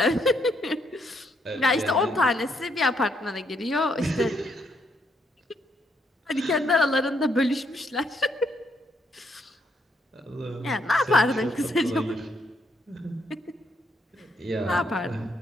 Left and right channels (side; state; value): both; normal; correlation 0.75